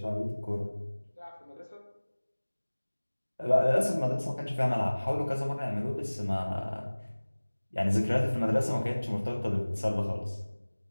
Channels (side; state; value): both; inverted; correlation -1.00